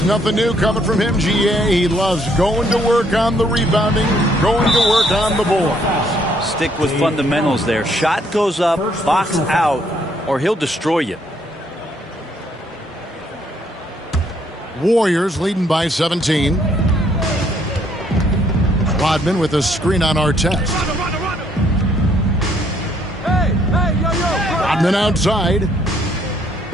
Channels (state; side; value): normal; both; correlation 0.68